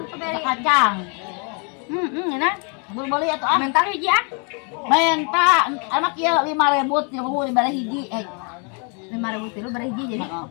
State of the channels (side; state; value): right; quieter; 36.8 dB